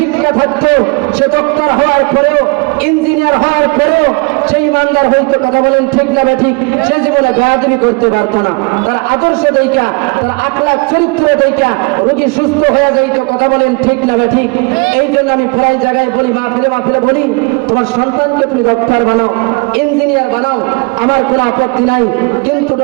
থাকতো, সে ডক্টর হওয়ার পরেও, ইঞ্জিনিয়ার হওয়ার পরেও সেই ইমানদার হইতো। কথা বলেন ঠিক না ঠিক? সে জীবনে বেয়াদবি করতে পারতো না। তার আদর্শ দেখা, তার আখলাক চরিত্র দেখা রোগী সুস্থ হয়ে যাইতো। কথা বলেন ঠিক না ঠিক? এই জন্য আমি প্রায় জায়গায় বলি, মাহফিলে বলি, তোমার সন্তানকে তুমি ডক্টর বানাও, ইঞ্জিনিয়ার বানাও, আমার কোনো আপত্তি নাই, কিন্তু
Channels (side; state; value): left; quieter; 30.5 dB